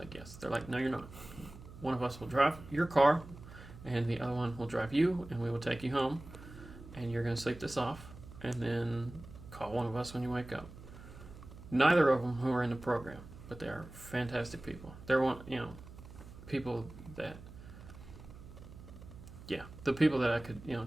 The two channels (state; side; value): noise; right; hum, 16 dB below the sound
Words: yes. They're like, no, you're not. One of us will drive your car, and the other one will drive you, and we will take you home, and you're going to sleep this off, and then call one of us when you wake up. Neither of them who are in the program, but they are fantastic people. They're people that, the people that I could,